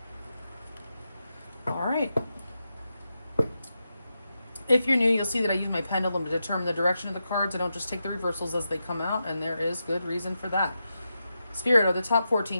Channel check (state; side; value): inverted; both; correlation -0.88